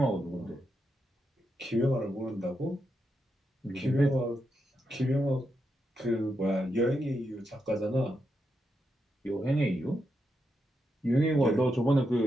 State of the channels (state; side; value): normal; both; correlation 0.84